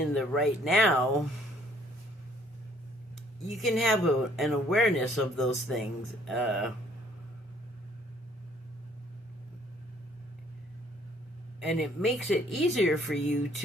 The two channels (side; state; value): both; normal; correlation 0.62